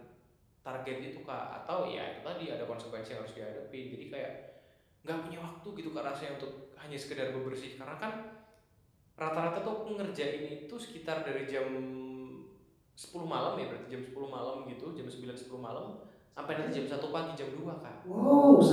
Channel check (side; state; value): both; identical; correlation 1.00